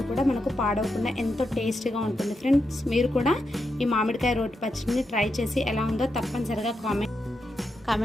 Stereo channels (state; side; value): normal; both; correlation 0.85